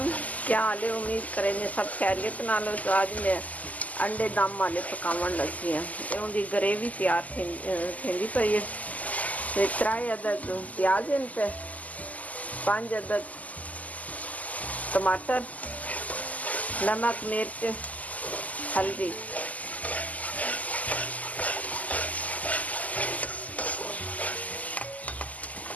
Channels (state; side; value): late; right; 0.076 ms